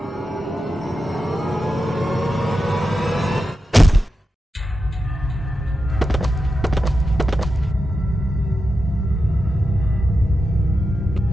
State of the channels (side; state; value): both; normal; correlation 0.90